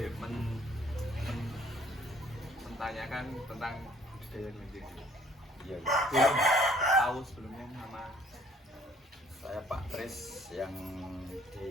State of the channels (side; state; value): both; normal; correlation 0.59